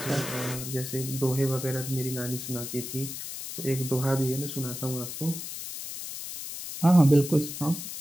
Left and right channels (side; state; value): left; noise; hiss, 8 dB below the sound